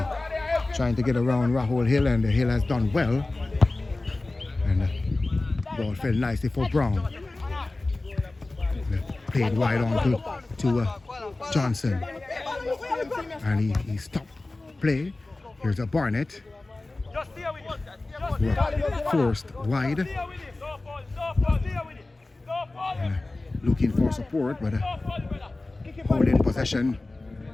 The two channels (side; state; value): right; quieter; 3.1 dB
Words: trying to get around Rahul Hill, and the Hill has done well. And the ball fell nicely for Brown. Played wide on to Johnson, and he stopped play. Here's a Barnett. Forced wide. Looking for support, but holding possession,